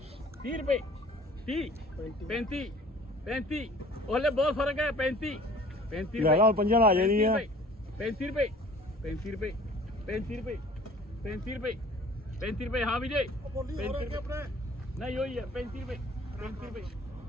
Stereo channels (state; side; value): normal; both; correlation 0.50